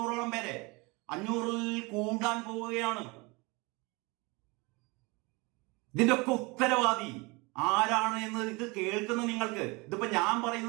പേരെ, 500-ൽ കൂടാൻ പോവുകയാണ്. ഇതിന്റെ ഒക്കെ ഉത്തരവാദി ആരാണ് എന്ന് ഇത് കേൾക്കുന്ന നിങ്ങൾക്ക്, ഇതിപ്പോ ഞാൻ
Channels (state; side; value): quieter; left; 26.5 dB